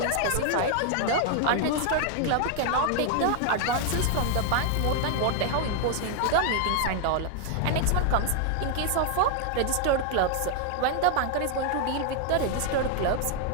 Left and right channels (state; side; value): different; both; correlation 0.00